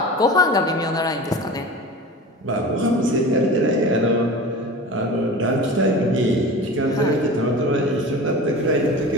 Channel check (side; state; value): both; normal; correlation 0.34